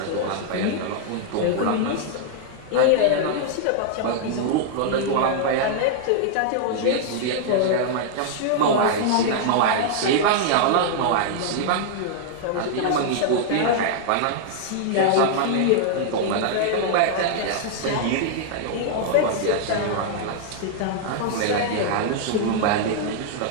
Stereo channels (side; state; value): both; different; correlation -0.01